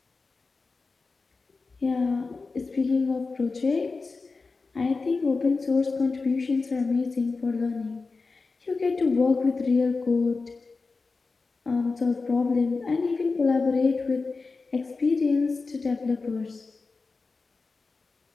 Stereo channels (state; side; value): quieter; right; 4.1 dB